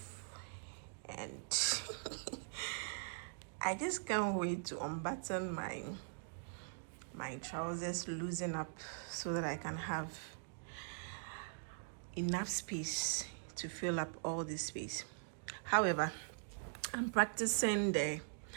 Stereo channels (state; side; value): silent; left; digital silence